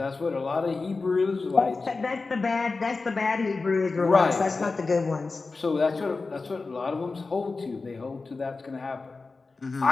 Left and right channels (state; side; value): quieter; right; 3.9 dB